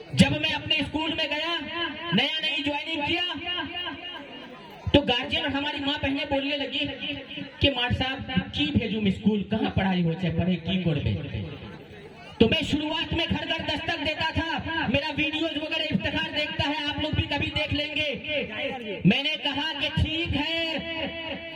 जब मैं अपने स्कूल में गया, नया नई ज्वाइनिंग किया, तो गार्जियन और हमारी माँ बहनें बोलने लगी कि मार साहब की भेजूं स्कूल, कहाँ पढ़ाई हो चाहे पढ़े की कोड़बे। तो मैं शुरुआत में घर घर दस्तक देता था, मेरा वीडियोज वगैरह इफ्तिखार देखता है, आप लोग भी कभी देख लेंगे। मैंने कहा कि ठीक है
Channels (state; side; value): identical; both; correlation 1.00